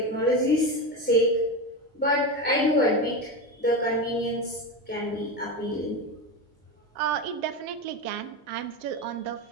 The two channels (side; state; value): both; normal; correlation 0.19